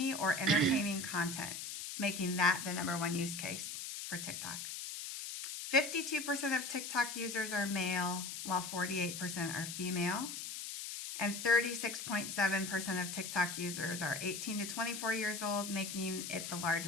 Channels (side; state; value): left; noise; hiss, 6 dB below the sound